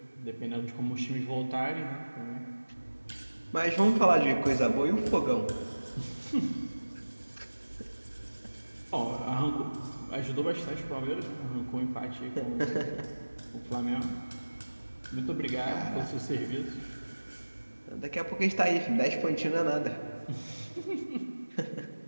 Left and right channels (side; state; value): both; inverted; correlation -1.00